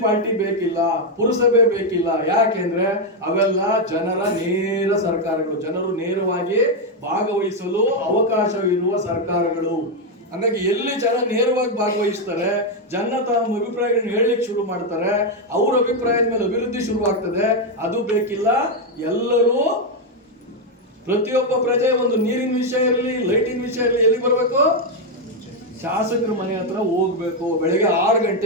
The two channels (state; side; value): normal; both; correlation 0.03